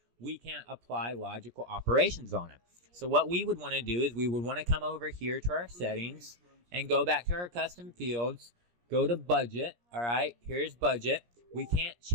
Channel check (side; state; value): left; late; 17 ms